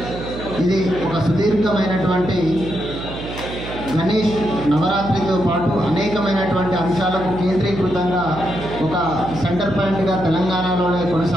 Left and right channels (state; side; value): noise; right; hum, 10 dB below the sound